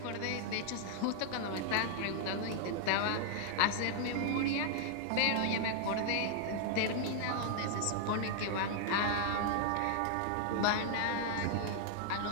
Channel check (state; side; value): different; both; correlation 0.00